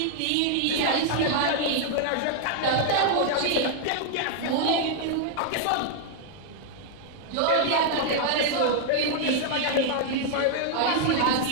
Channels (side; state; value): both; different; correlation 0.00